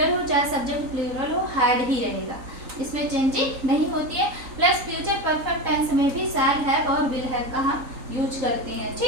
हो चाहे सब्जेक्ट प्लूरल हो, हैड ही रहेगा, इसमें चेंजिंग नहीं होती है। प्लस फ्यूचर परफेक्ट टेंस में भी शैल हैव और विल हैव का हम यूज करते हैं।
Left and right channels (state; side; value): late; left; 3.8 ms